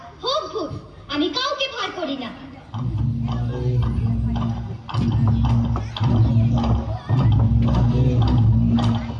হোক ভূত, আমি কাউকে ভয় করি না।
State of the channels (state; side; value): identical; both; correlation 1.00